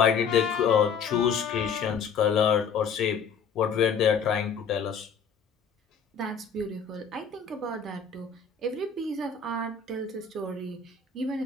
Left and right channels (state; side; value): quieter; right; 6.2 dB